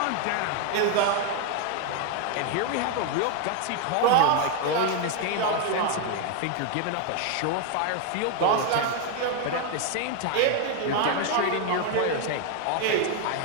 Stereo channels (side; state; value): both; different; correlation 0.01